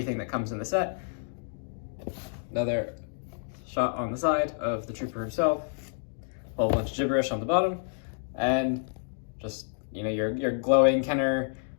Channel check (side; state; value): right; silent; 58 dB below the other